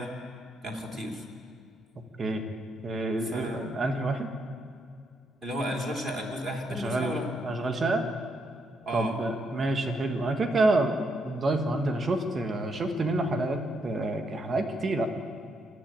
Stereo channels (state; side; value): normal; both; correlation 0.77